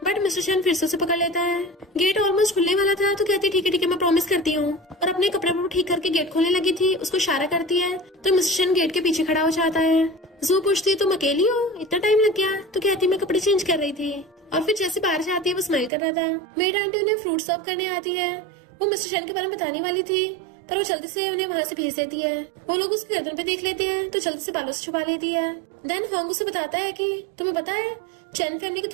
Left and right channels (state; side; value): drops out; left; at 15.9 s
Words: बट मिस्टर चैन फिर से उसे पकड़ लेता है। गेट ऑलमोस्ट खुलने वाला था तो कहती ठीक है मैं प्रॉमिस करती हूँ, और अपने कपड़े को ठीक करके गेट खोलने लगी थी। उसको इशारा करती है तो मिस्टर चैन गेट के पीछे खड़ा हो जाता है। जू पूछती है तुम अकेली हो, इतना टाइम लग गया? तो कहती मैं कपड़े चेंज कर रही थी। और फिर जैसे बाहर जाती है वो स्माइल कर रहा था। मेड आंटी उन्हें फ्रूट सर्व करने आती है। वो मिस्टर चैन के बारे में बताने वाली थी, पर वो जल्दी से उन्हें वहाँ से भेज देती है। वो लोग उसकी गर्दन पे देख लेते हैं तो जल्दी से बालों से छुपा लेती है। देन हॉन्ग उसे बताता है कि तुम्हें पता है चैन फैमिली के